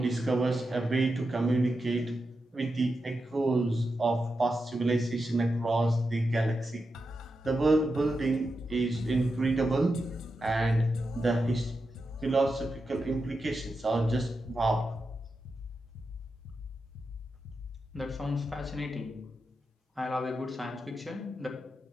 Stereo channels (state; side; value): normal; both; correlation 0.88